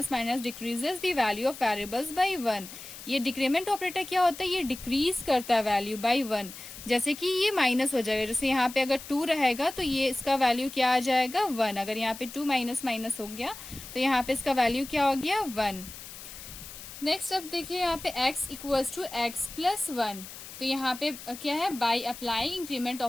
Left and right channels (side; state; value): left; noise; hiss, 13 dB below the sound